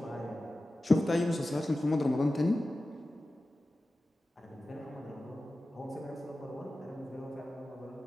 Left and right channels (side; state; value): both; normal; correlation 0.95